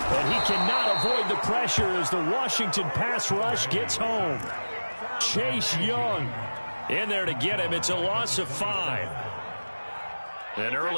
And he cannot avoid the pressure as the Washington pass rush gets home. Chase Young in there to get him. It's a loss of 5. An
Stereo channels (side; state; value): both; inverted; correlation -1.00